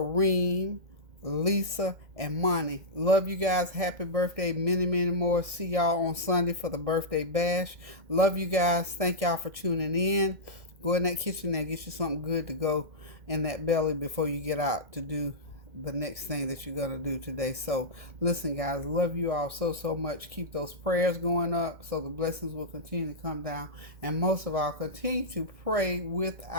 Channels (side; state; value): left; late; 1.6 ms